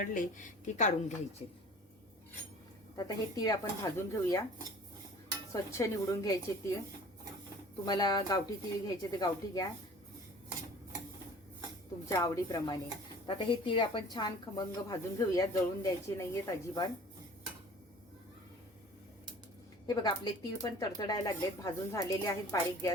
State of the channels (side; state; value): both; normal; correlation 0.46